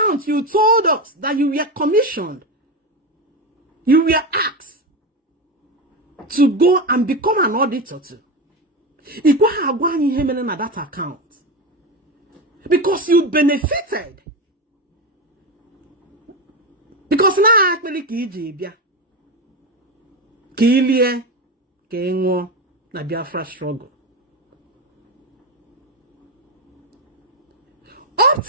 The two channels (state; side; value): normal; both; correlation 0.17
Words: you told us that you were commissioned, you were asked to go and become an auditor to. That account because you benefited. Because now actually Kilie Kengo na Biafra struggle. Up